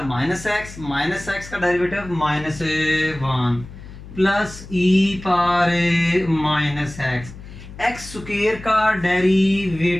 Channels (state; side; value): noise; left; hum, 15 dB below the sound